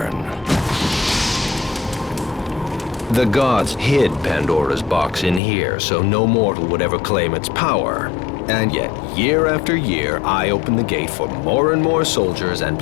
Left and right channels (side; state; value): right; drops out; at 5.4 s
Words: The gods hid Pandora's box in here, so no mortal would ever claim its power. And yet, year after year, I open the gate for more and more soldiers and